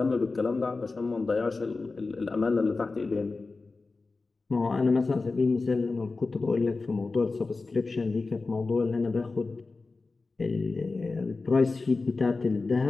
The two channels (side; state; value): right; quieter; 3.8 dB